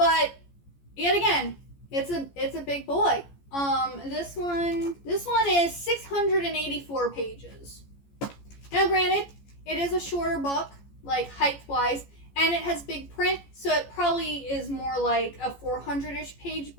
yet again, it's a big boy. This one is 684 pages. Now, granted, it is a shorter book, like height-wise, and it has big print, so it probably is more like a 400-ish page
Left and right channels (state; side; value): late; right; 14 ms